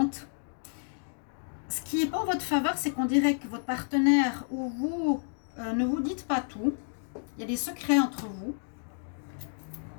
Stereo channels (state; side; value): silent; right; digital silence